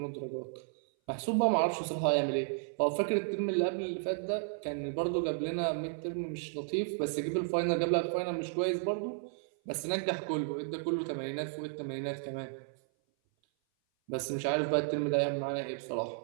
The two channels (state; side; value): silent; left; 56 dB below the other